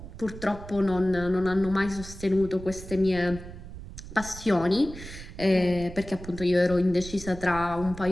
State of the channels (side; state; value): right; noise; rumble, 13 dB below the sound